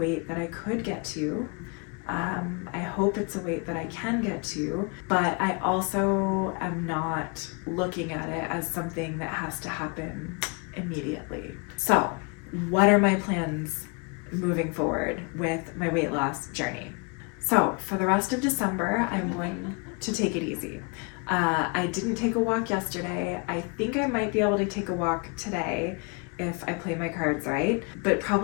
that I could get to. I hope it's a weight that I can get to, but I also am not looking at it as something that has to happen immediately. So, what are my plans moving forward with my weight loss journey? So, for the rest of December, I'm going to take it easy. I didn't take a walk yesterday. I think I might be able to take a walk today if I play my cards right, but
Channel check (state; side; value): quieter; right; 32.7 dB